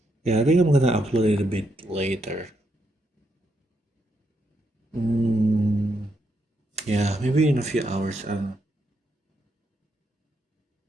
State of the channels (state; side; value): normal; both; correlation 0.79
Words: Yeah, I think I'm gonna upload it a bit later. Yeah, maybe in a few hours. I don't know.